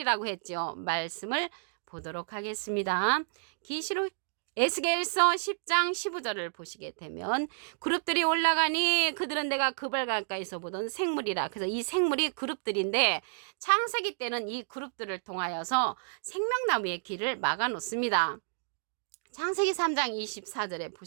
했죠. 말씀을 보도록 하겠습니다. 계시록 에스겔서 10장 15절을 보시게 되면 그룹들이 올라가니 그들은 내가 그발 가까이서 보던 생물이라. 그래서 이 생물이 그룹들인데 창세기 때는 이 그룹들을 통하여서 생명나무의 길을 막아 놓습니다. 창세기 3장 24절에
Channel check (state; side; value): silent; left; digital silence